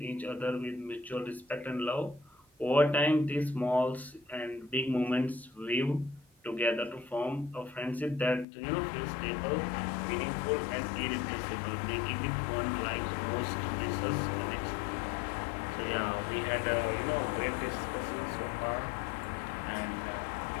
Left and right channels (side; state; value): right; drops out; at 8.5 s